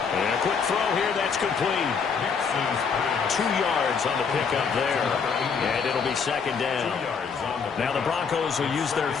And a quick throw here, that's complete. 2 yards on the pickup there, and it'll be second down. Now the Broncos will use their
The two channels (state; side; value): quieter; right; 5.9 dB